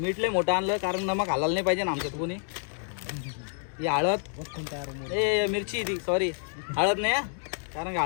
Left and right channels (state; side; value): silent; right; 55 dB below the other